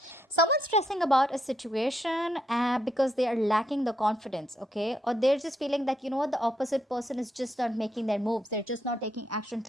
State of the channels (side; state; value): both; normal; correlation 0.78